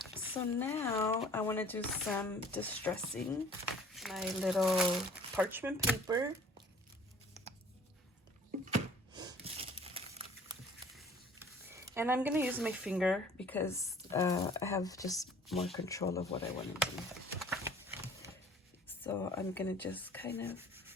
So now I want to do some distressing. My little parchment paper. And I'm going to use my finger because I have just more control of what I want to do. So I'm going to just kind of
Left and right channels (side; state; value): both; normal; correlation 0.51